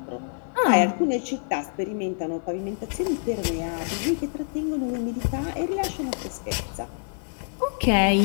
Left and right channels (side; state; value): right; silent; 61 dB below the other